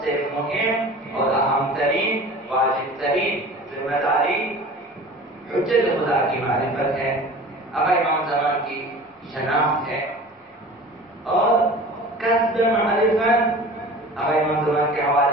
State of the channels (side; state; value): both; normal; correlation 0.40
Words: سے مہم اور اہم ترین واجب ترین ذمہ داری حجت خدا کی معرفت ہے، آقا امام زمان کی شناخت ہے اور کسب معرفت آقا امام زمان کے